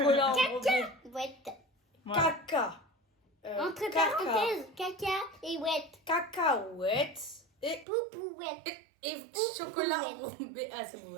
enrobé. Ouette. Voilà. Caca. Entre caca. parenthèses, caca et ouette. Cacahuète. Et Poupouette. chocolat ouais. enrobé. Ah, c'est bon,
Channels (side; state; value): left; drops out; at 7.9 s